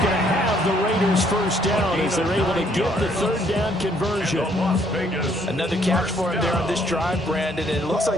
to have the Raiders 1st down as they're able to get the 3rd down conversion. Another catch for him there on this drive, Brandon, and it looks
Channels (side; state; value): both; normal; correlation 0.66